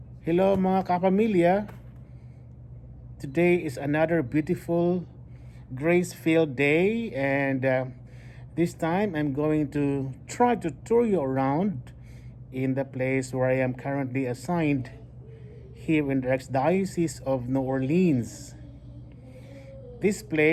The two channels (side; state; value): both; identical; correlation 1.00